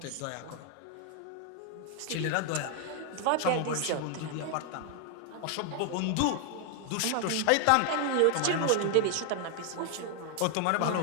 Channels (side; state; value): both; different; correlation 0.00